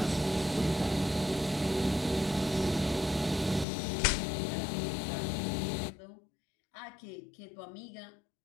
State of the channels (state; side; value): drops out; right; at 3.7 s